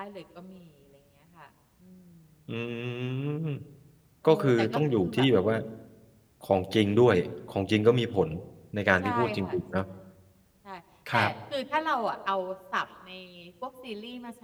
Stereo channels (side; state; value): both; identical; correlation 1.00